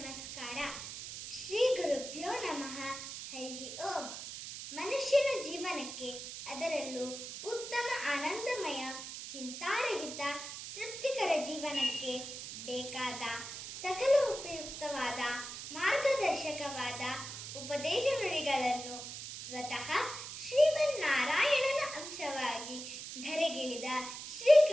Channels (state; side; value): noise; right; hiss, 9 dB below the sound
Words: ಶ್ರೀ ಗುರುಭ್ಯೋ ನಮಃ. ಹರಿ ಓಂ. ಮನುಷ್ಯನ ಜೀವನಕ್ಕೆ, ಅದರಲ್ಲೂ ಉತ್ತಮ ಆನಂದಮಯ ಚಿಂತಾರಹಿತ ತೃಪ್ತಿಕರ ಜೀವನಕ್ಕೆ ಬೇಕಾದ ಸಕಲ ಉಪಯುಕ್ತವಾದ ಮಾರ್ಗದರ್ಶಕವಾದ ಉಪದೇಶ ನುಡಿಗಳನ್ನು ಸ್ವತಃ ಶ್ರೀಮನ್ನಾರಾಯಣನ ಅಂಶವಾಗಿ ಧರೆಗಿಳಿದ